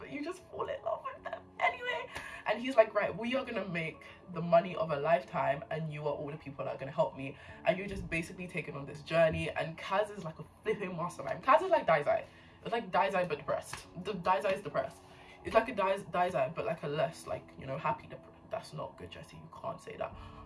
you just fall in love with them anyway. And he's like, right, we are gonna make the money of a lifetime and you are all the people that are gonna help me. And you're just basically taking on this journey. And Kaz is like a flipping mastermind. Kaz is like Daizai. It's like Daizai but depressed. The Daizai is depressed. It's like a Daizai but like a less, like, you know, happy depressed. That's not good, Jesse, you can't say that.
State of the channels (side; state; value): both; identical; correlation 1.00